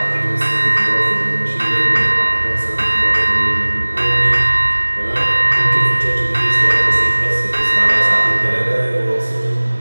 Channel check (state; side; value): inverted; both; correlation -1.00